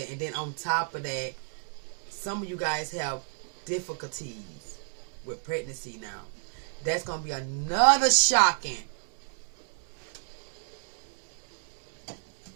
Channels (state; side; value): silent; left; 57 dB below the other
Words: And then on top of that, some of you guys have difficulties with pregnancy now. That's gonna be another shocking.